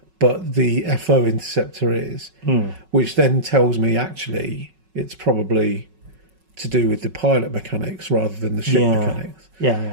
but the FO interceptor is, which then tells me actually it's probably to do with the pilot mechanics rather than the ship mechanics.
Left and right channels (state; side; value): late; left; 5.4 ms